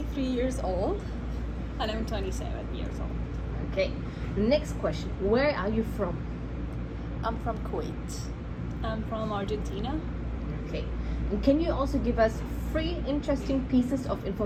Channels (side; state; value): both; identical; correlation 1.00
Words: years old. And I'm 27 years old. Okay. Next question. Where are you from? I'm from Kuwait. I'm from Argentina. Okay. And can you also give us 3 interesting pieces of